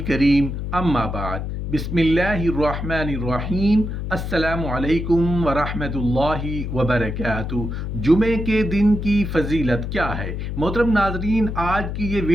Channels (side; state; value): left; noise; hum, 4 dB below the sound